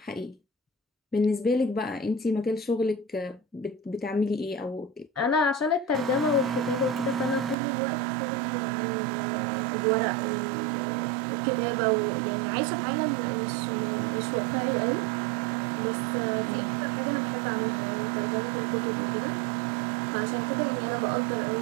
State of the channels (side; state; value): left; drops out; at 7.6 s